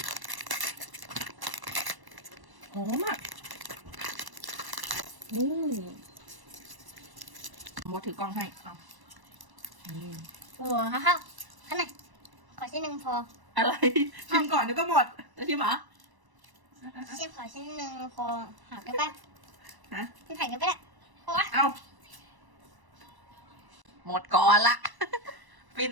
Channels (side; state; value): left; late; 1.0 ms